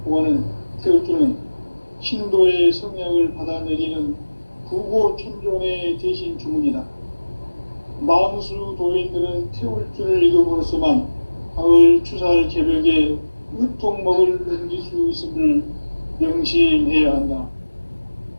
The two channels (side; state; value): both; inverted; correlation -1.00